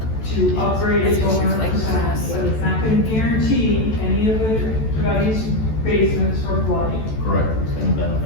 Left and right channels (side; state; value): right; late; 14 ms